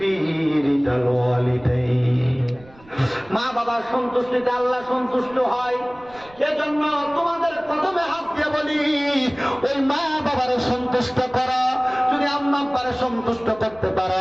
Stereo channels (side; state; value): right; noise; rumble, 25 dB below the sound